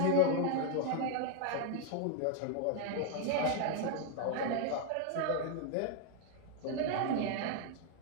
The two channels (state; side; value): different; both; correlation 0.01